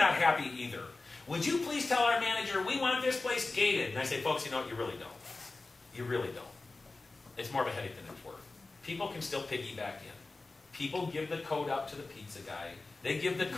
happy either. Would you please tell our manager, we want this place gated? And I say, folks, you know what? You really don't. You really don't. It's more of a headache than it's worth. People can still piggyback in. People give the code out to the pizza guy. They give the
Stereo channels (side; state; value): right; quieter; 3.5 dB